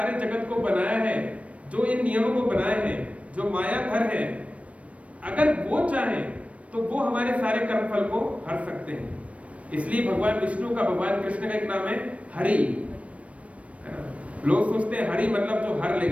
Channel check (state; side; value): late; left; 0.064 ms